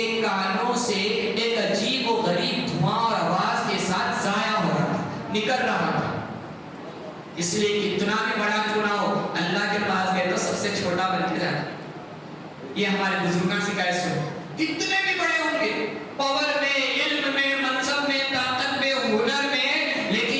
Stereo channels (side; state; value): both; identical; correlation 1.00